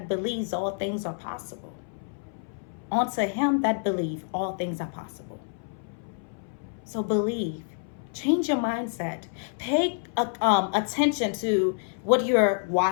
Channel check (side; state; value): right; silent; 59 dB below the other